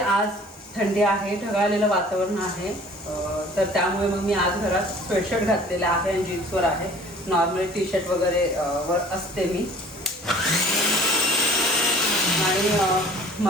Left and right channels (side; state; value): both; normal; correlation 0.49